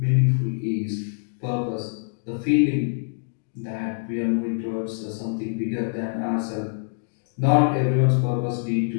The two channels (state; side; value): silent; right; digital silence